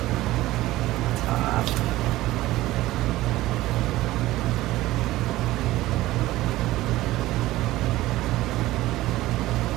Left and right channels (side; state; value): left; quieter; 16.9 dB